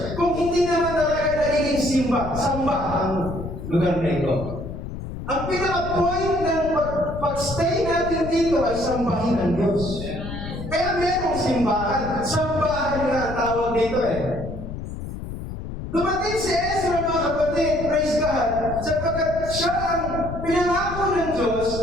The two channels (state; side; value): noise; left; rumble, 8 dB below the sound